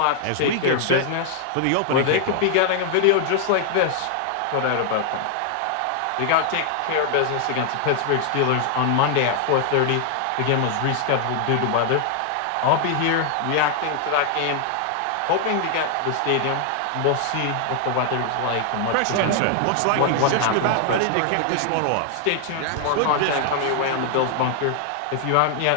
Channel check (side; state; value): both; different; correlation 0.00